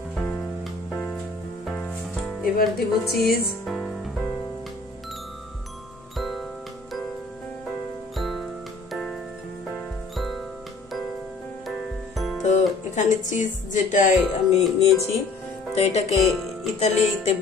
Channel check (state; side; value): quieter; right; 3.7 dB